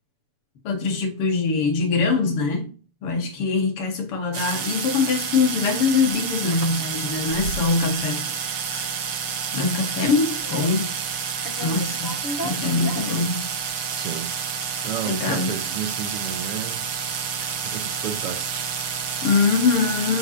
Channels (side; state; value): right; late; 6.8 ms